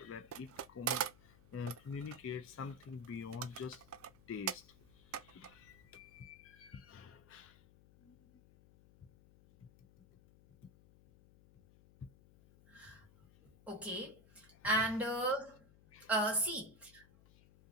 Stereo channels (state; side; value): noise; left; hum, 23 dB below the sound